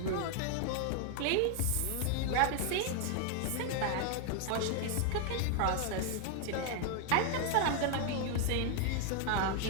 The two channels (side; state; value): both; different; correlation 0.00